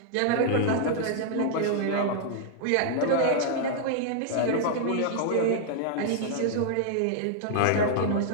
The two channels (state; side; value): different; both; correlation -0.01